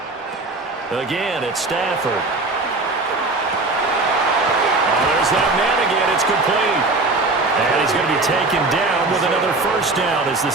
Again, it's Stafford. Oh, there's that man again. It's complete. And he's going to be taken down with another first down as the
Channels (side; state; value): left; quieter; 3.3 dB